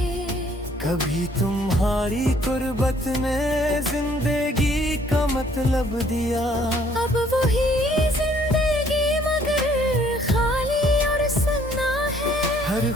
कभी तुम्हारी कुर्बत ने जिंदगी का मतलब दिया। अब वही जिंदगी मगर खाली और सुन्ना है। हर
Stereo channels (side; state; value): both; normal; correlation 0.62